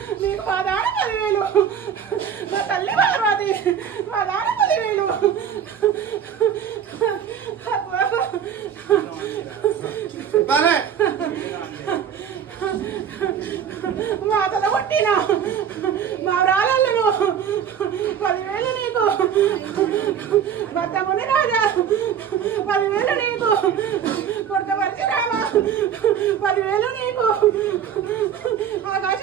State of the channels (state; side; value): quieter; left; 8.5 dB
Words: నీకు మా దాన 10,000, నా తల్లి పార్వతి మా దాన 10,000. మా తల కొట్టిన మా రాళ్ళను 10,000 నీకు. భర్తముని రాజా 10,000 నీకు. కొడుక పరశురామ 10,000 నీకు.